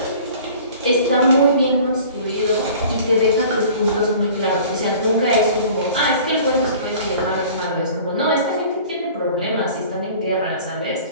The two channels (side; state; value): both; inverted; correlation -0.46